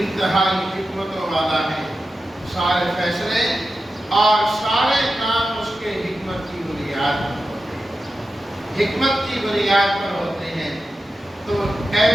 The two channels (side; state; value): both; normal; correlation 0.91